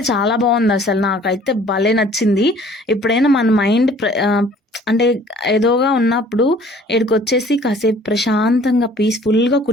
చాలా బాగుంది అసలు. నాకైతే భలే నచ్చింది. ఎప్పుడైనా మన మైండ్ అంటే ఏదోగా ఉన్నప్పుడు ఈడికొచ్చేసి కాసేపు ప్రశాంతంగా పీస్ఫుల్గా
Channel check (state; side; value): normal; both; correlation 0.53